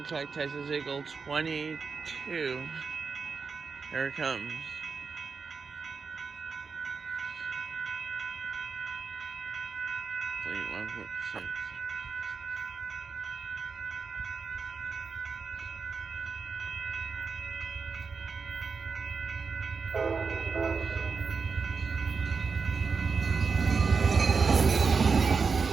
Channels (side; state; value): left; quieter; 5.2 dB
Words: Texas Eagle 22. Here it comes. Fleet 146.